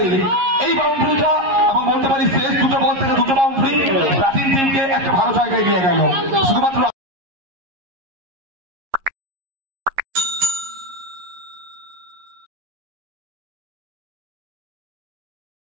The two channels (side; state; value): left; late; 11 ms